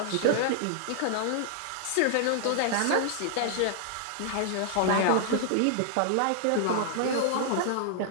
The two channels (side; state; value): both; different; correlation 0.00